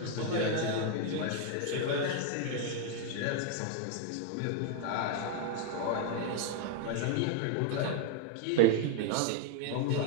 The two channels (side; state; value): both; different; correlation 0.00